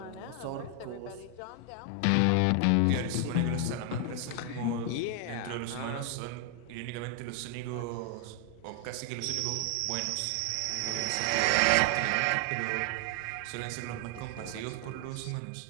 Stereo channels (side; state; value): both; different; correlation 0.00